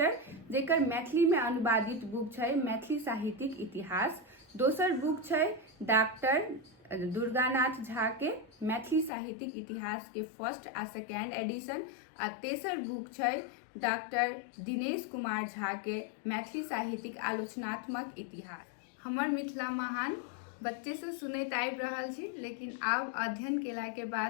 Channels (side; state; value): right; drops out; at 9.1 s